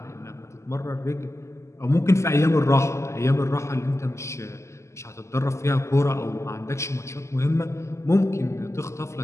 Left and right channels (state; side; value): late; right; 0.13 ms